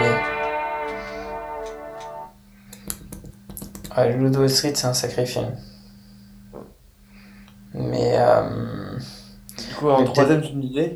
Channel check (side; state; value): both; identical; correlation 1.00